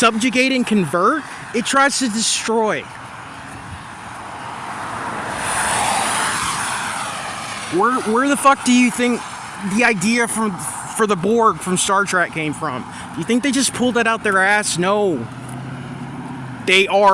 and convert, it tries to destroy. Where the fuck do you think the idea for the Borg from Star Trek came from? You think they just pulled that out their ass? No. They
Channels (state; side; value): identical; both; correlation 1.00